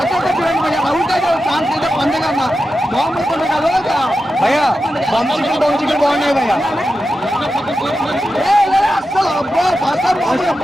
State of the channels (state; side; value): normal; both; correlation 0.90